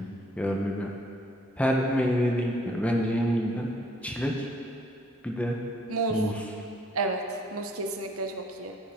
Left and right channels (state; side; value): normal; both; correlation 0.63